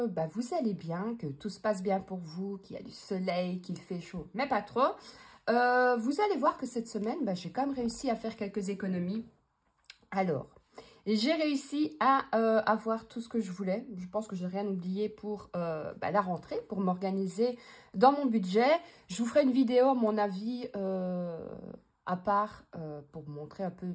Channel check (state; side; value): identical; both; correlation 1.00